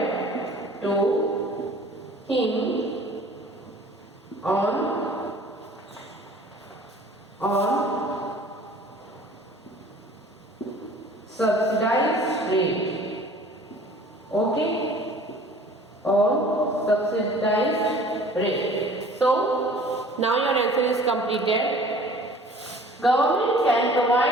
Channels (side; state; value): both; normal; correlation 0.48